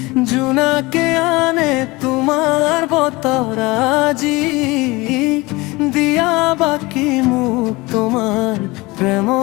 জোনাকে আনে তোমার বতরাজি, দিয়া বাকি মুখ তোমার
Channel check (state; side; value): quieter; right; 22.7 dB